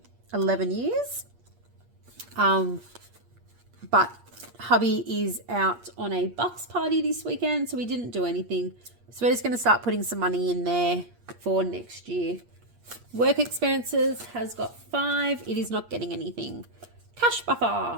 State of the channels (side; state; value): left; late; 8.5 ms